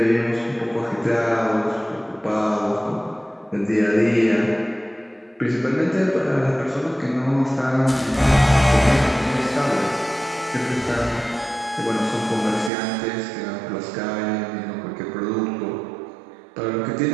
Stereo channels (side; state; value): left; drops out; at 12.7 s